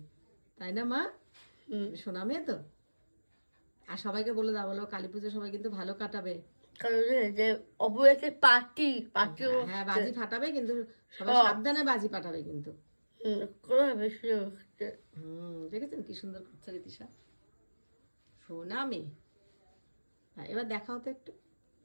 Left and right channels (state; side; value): inverted; both; correlation -1.00